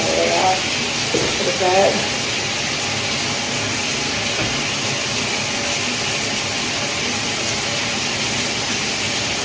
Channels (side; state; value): both; identical; correlation 1.00